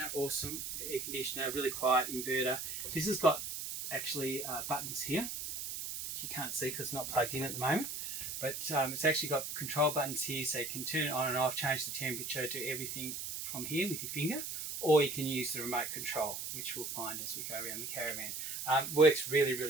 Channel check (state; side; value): noise; right; hiss, 5 dB below the sound